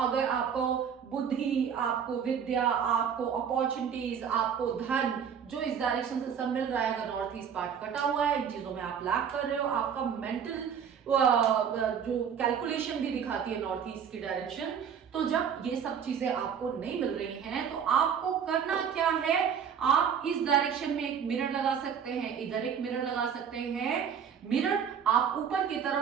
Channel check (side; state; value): left; quieter; 7.6 dB